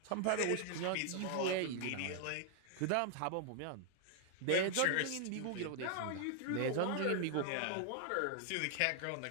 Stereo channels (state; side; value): different; both; correlation 0.00